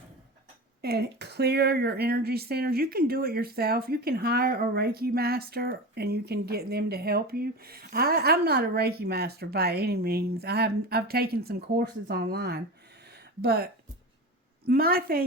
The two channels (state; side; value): normal; both; correlation 0.27